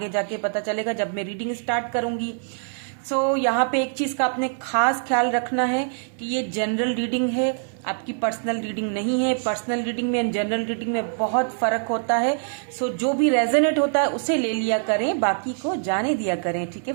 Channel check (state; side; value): silent; left; 63 dB below the other